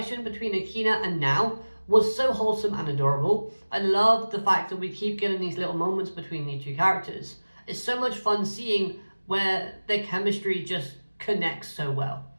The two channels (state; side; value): inverted; both; correlation -1.00